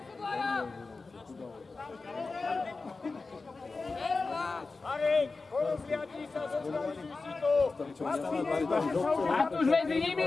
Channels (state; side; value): quieter; right; 3.9 dB